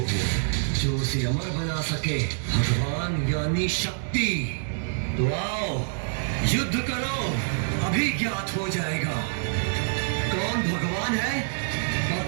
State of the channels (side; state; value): left; silent; digital silence